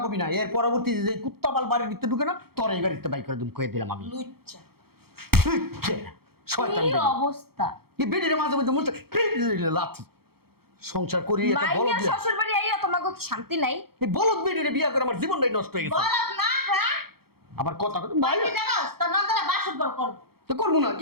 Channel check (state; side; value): late; left; 0.95 ms